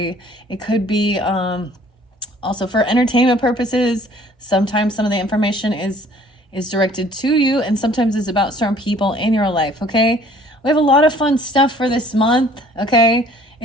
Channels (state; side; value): normal; both; correlation 0.55